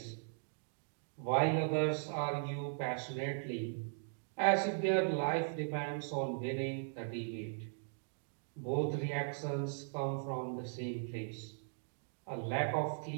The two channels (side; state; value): left; silent; digital silence